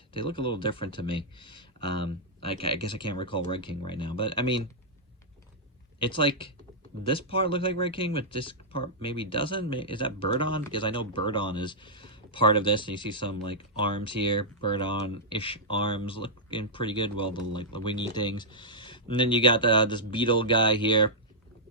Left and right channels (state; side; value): normal; both; correlation -0.10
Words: They look a little different to me. I guess I can't recall Red King right now, but I mean, it's like, this part looks like Red King, but this part maybe doesn't. Is that Birdon? Because I know Birdon is part of this, and you see some, like, arms here. Birdon-ish arms looking pretty good. Well, the, like, the wingy things. And then you got this beetle guy here.